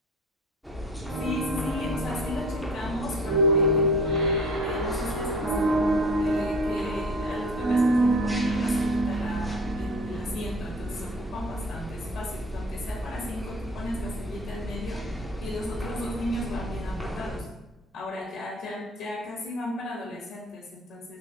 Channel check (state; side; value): normal; both; correlation 0.43